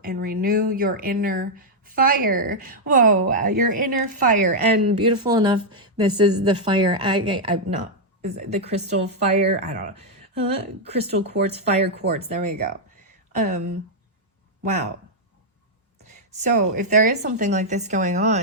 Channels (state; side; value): normal; both; correlation -0.03